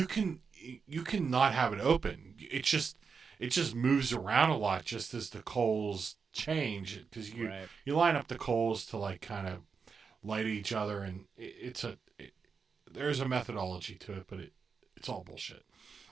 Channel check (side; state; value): left; quieter; 5.6 dB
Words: can not have it open. It just moves around a lot just as the coals change because Right. you line up the coals to like kind of light each other, and there's a methodology to it, but it's all bullshit.